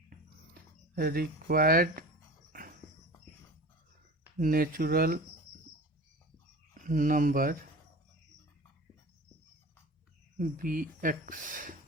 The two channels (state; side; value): normal; both; correlation 0.36